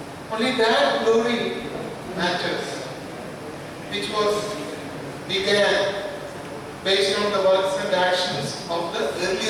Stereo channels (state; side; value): identical; both; correlation 1.00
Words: Only that glory matters, which was began based on the works and actions of the